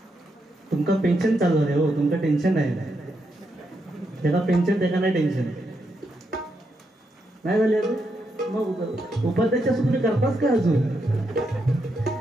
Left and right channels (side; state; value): both; normal; correlation 0.81